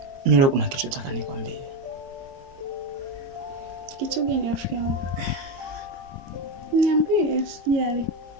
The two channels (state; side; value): late; left; 22 ms